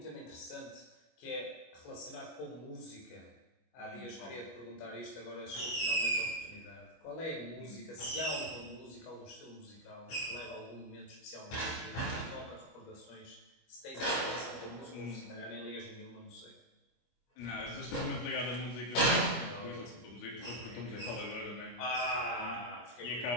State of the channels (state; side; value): late; right; 25 ms